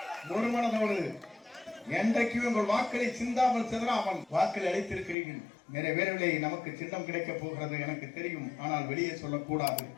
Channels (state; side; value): drops out; right; at 5.2 s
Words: ஒரு மனதோடு என்றைக்கும் உங்கள் வாக்களை சிந்தாமல் சிதறாமல் வாக்களை அளித்திருக்கிறீர்கள். நிறைவேறவில்லை. நமக்கு சின்னம் கிடைக்க போகிறது எனக்கு தெரியும், ஆனால் வெளியே சொல்லக்கூடாது.